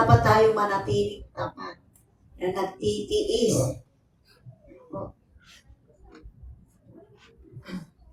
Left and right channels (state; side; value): identical; both; correlation 1.00